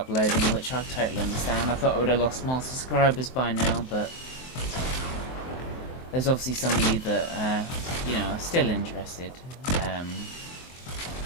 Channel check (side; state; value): right; late; 23 ms